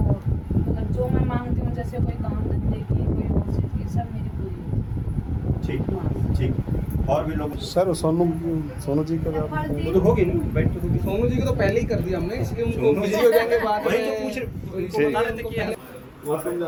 मतलब जो मैं मांगती हूँ, जैसे कोई काम धंधे की, कोई और चीज़ की, सब मेरी पूरी। ठीक ठीक। और भी लोग? सर सोनू जी का वो तो होगी ना, बैठ तो होगी। सोनू जी को तो पहले ही कर दिया हमने, इसलिए उनको सोनू बिजी हो जाएंगे बाद वही में। तो पूछ रहे, उनको बता रहे थे कि वॉशरूम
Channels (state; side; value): identical; both; correlation 1.00